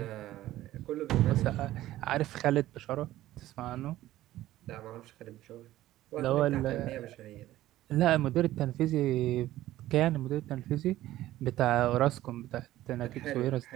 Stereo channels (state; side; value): quieter; left; 14.9 dB